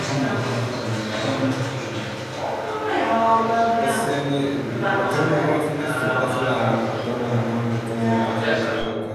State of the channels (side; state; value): both; identical; correlation 1.00